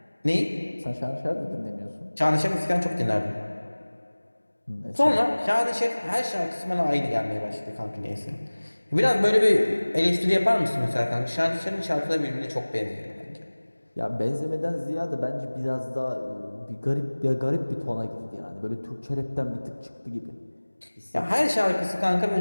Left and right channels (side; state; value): both; inverted; correlation -1.00